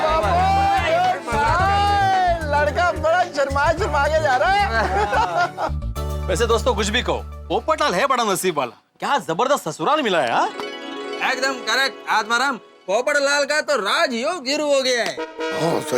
लड़का बड़ा शर्मा के जा रहा है। वैसे दोस्तों, कुछ भी कहो, पोपटलाल है बड़ा नसीब वाला। क्या जबरदस्त ससुराल मिला है। हाँ? एकदम करेक्ट आत्माराम। पोपटलाल का तो राजयोग शुरू हो गया है। हाँ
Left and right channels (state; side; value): identical; both; correlation 1.00